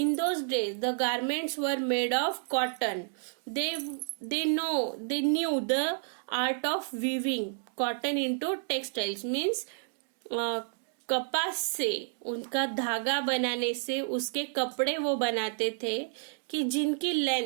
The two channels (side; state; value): left; silent; digital silence